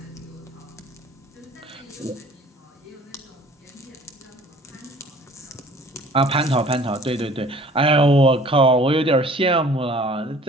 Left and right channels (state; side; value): normal; both; correlation 0.51